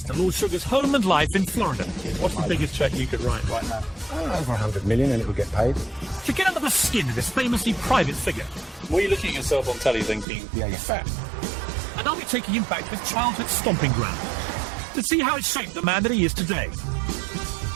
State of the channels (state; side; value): drops out; left; at 10.2 s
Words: to Lord Sugar's home and life in Florida. What's the biggest cheque you could write right now? Over 100 million and it would get paid. To get under the skin of this famously private figure. Were you looking at yourself on telly thinking, Yeah, you're fat. And I'll be taking him back to his childhood stomping ground to see how it shaped the man that he is today.